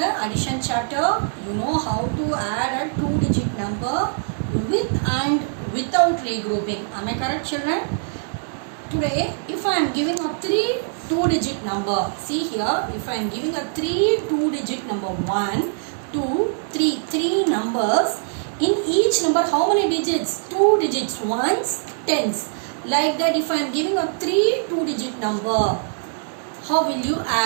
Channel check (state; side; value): silent; left; digital silence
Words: addition chapter, you know how to add a two-digit number with and without regrouping. Am I correct, children? Today, if I am giving a three two-digit number, see here, if I am giving a three two-digit number, 1, 2, 3, three numbers, in each number how many digits? Two digits, ones, tens. Like that, if I am giving a three two-digit number, how will you